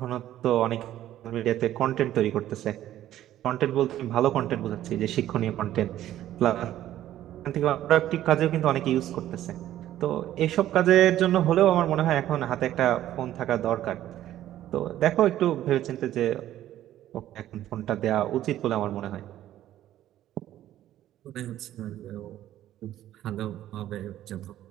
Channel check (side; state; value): left; quieter; 12.8 dB